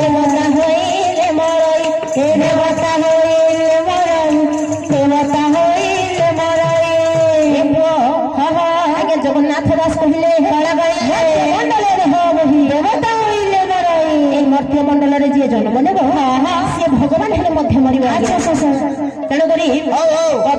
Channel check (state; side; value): identical; both; correlation 1.00